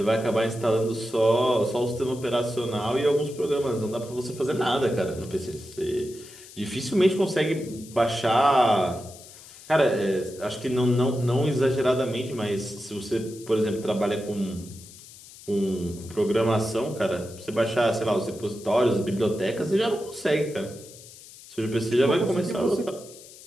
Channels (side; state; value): left; noise; hiss, 19 dB below the sound